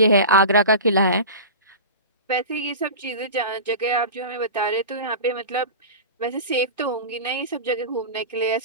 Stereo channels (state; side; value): inverted; both; correlation -0.30